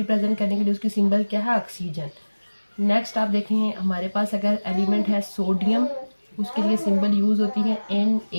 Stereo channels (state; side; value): inverted; both; correlation -1.00